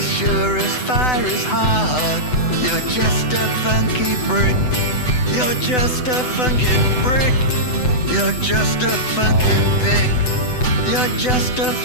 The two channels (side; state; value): right; late; 8.0 ms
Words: sure as fire is hard, you're just a funky brick. You're just a funky brick. You're just a funky pig. You're just a